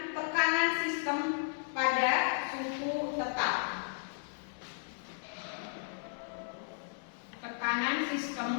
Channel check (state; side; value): silent; right; 55 dB below the other